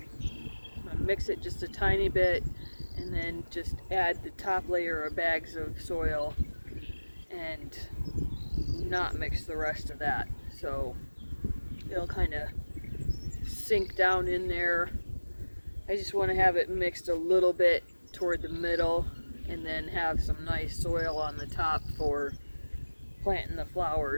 I'm going to mix it just a tiny bit and then just add the top layer of bags of soil and not mix the rest of that. So it'll kind of sink down in there. I just want to have it mixed a little bit toward the middle and then have some nice soil on the top for planting the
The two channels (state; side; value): inverted; both; correlation -1.00